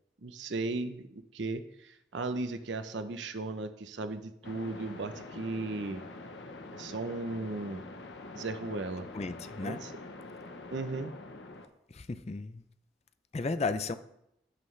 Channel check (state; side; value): normal; both; correlation 0.43